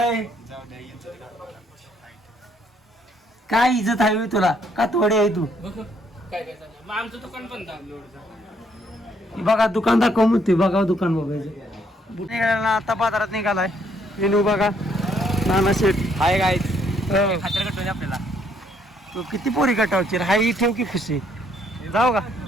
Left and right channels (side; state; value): both; normal; correlation 0.69